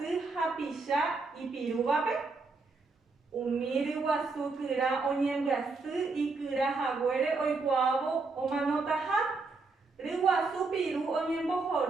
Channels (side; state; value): left; quieter; 3.9 dB